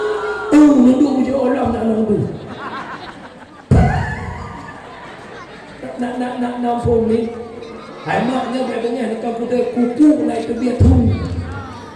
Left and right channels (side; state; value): both; identical; correlation 1.00